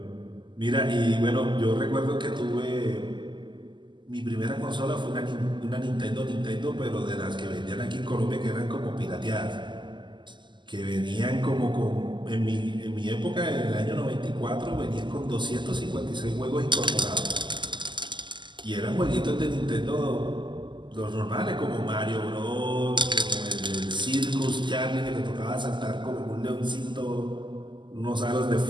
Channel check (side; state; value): left; late; 0.22 ms